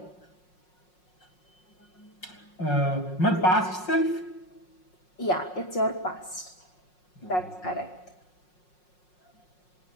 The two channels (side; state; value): right; late; 5.5 ms